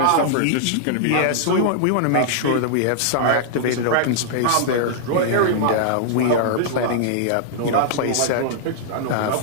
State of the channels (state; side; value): different; both; correlation -0.01